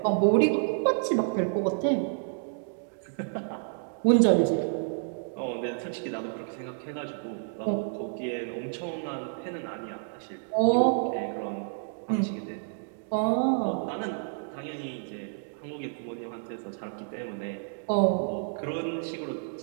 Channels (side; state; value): left; silent; digital silence